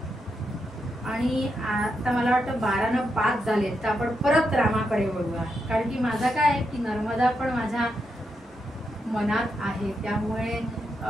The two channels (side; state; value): both; normal; correlation 0.83